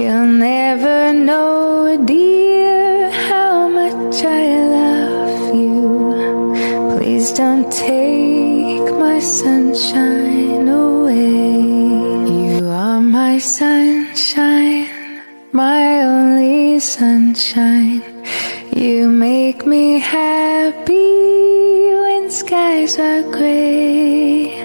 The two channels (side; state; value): both; inverted; correlation -1.00